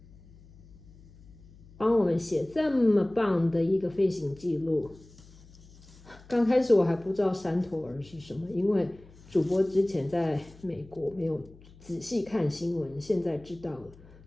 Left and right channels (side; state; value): left; noise; hum, 23 dB below the sound